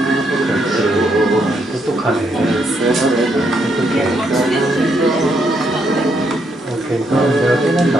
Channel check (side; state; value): both; normal; correlation 0.76